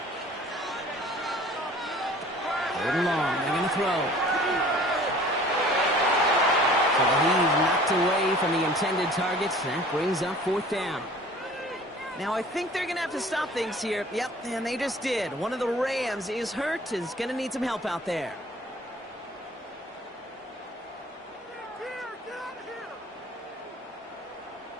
3rd and long, they're going to throw. So the heave knocked away from the intended targets. That brings up 4th down. Now, I think they're going to have to stop things here. Yep, and they just did. One of the Rams is hurt, is going to need some help out there.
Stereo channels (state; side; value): normal; both; correlation 0.48